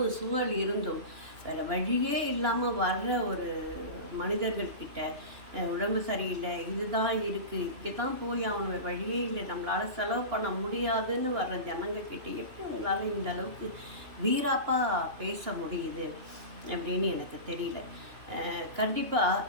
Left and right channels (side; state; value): left; late; 2.9 ms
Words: சூழல் இருந்தும் வேறு வழியே இல்லாமல் வர்ற ஒரு மனிதர்கள்கிட்ட உடம்பு சரியில்லை, இதுதான் இருக்குது, இப்படி தான் போய் அவனுக்கு வழியே இல்லை, நம்மளால் செலவு பண்ண முடியாதுன்னு வர்ற ஜனங்க கிட்ட எப்படி உங்களால் இந்த அளவுக்கு வீராப்பாக பேச முடியுது அப்படின்னு எனக்கு தெரியல. கண்டிப்பாக